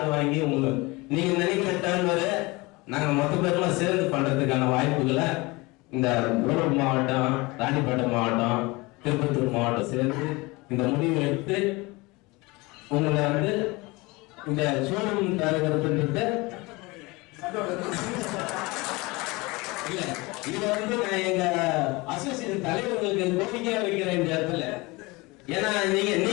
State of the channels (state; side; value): quieter; right; 23.9 dB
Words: வாங்கி நீங்க நினைக்கிற டர்ன் வரை நாங்க மொத்த பேருமா சேர்ந்து பண்றதுக்கான வாய்ப்புகளை இந்த வேலூர் மாவட்டம், ராணிப்பேட்டை மாவட்டம், திருப்பத்தூர் மாவட்டம் சேர்ந்து இந்த முடிவு எடுத்து உங்களை வந்து இந்த ஷோரூம் தரப்படுத்த இல்ல இத வந்து நான் எங்க அசோசியேஷன் தலைவர்களுக்கு கோரிக்கையா வைக்கிறேன் இந்த இடத்துல. ஏன்னா நீங்க